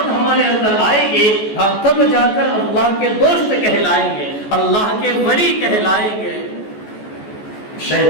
ہمارے اندر آئے گی، تب جا کر اللہ کے دوست کہلائیں گے، اللہ کے ولی کہلائیں گے۔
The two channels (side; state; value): right; late; 14 ms